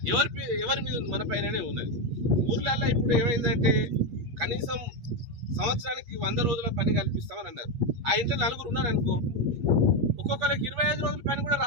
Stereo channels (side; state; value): left; late; 8.4 ms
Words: ఎవరి మీద ఉంది? మన పైననే ఉన్నది. ఊర్లల్లో ఇప్పుడు ఏమైందంటే కనీసం సంవత్సరానికి 100 రోజుల పని కల్పిస్తామని అన్నారు. ఆ ఇంట్లో 4 ఉన్నారు అనుకో, ఒక్కొక్కరికి 25 రోజుల పని కూడా